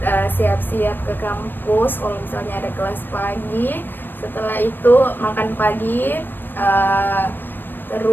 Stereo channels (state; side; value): late; right; 0.094 ms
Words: siap-siap ke kampus kalau misalnya ada kelas pagi. Setelah itu makan pagi,